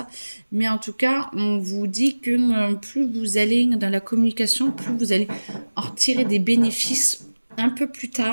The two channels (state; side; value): inverted; both; correlation -1.00